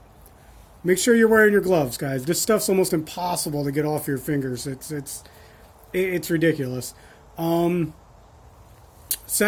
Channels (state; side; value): identical; both; correlation 1.00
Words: Make sure you're wearing your gloves, guys. This stuff's almost impossible to get off your fingers. It's ridiculous.